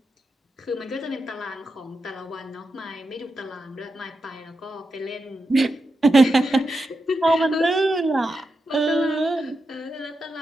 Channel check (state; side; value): normal; both; correlation 0.88